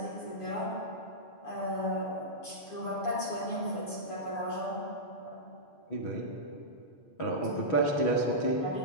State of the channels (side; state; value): right; late; 6.9 ms